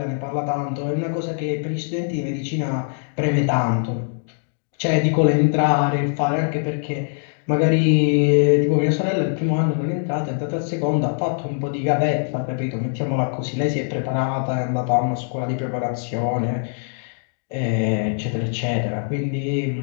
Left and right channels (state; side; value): silent; right; digital silence